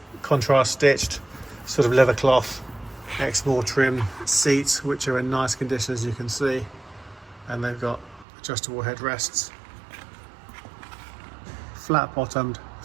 contrast stitched sort of leather cloth Exmoor trim seats, which are in nice condition, as you can see, and they've got adjustable headrests. Flat bottomed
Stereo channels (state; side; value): drops out; left; at 8.2 s